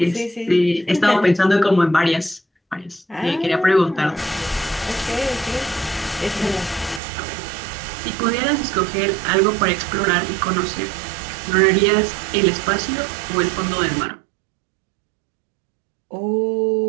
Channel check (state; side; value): drops out; left; at 7.0 s